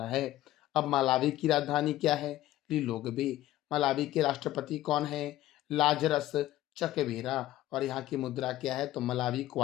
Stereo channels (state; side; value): quieter; right; 14.8 dB